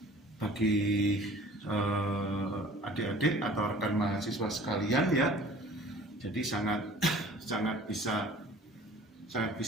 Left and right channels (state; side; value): normal; both; correlation 0.48